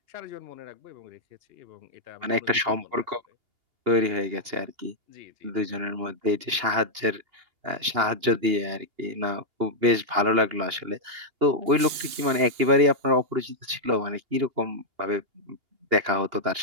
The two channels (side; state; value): left; late; 2.8 ms